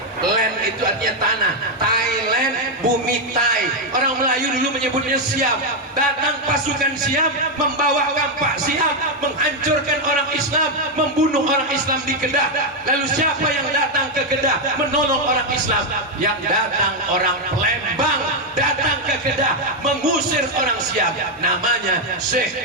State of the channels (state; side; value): normal; both; correlation 0.03